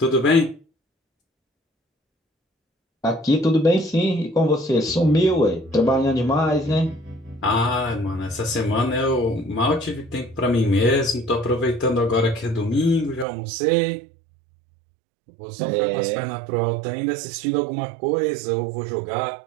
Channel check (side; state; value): left; drops out; at 13.2 s